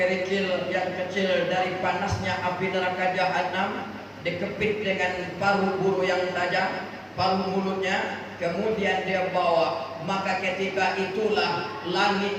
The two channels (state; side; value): identical; both; correlation 1.00